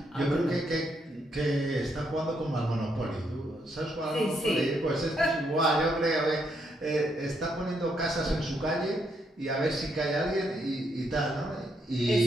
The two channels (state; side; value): normal; both; correlation 0.76